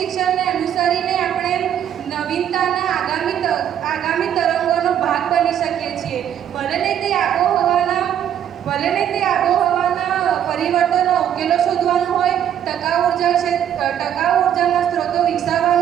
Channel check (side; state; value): left; quieter; 9.9 dB